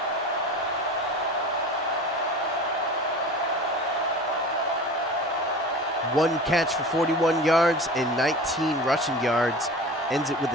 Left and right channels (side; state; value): both; normal; correlation 0.36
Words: One catch for 41 yards and 19 rushing yards. Ends it with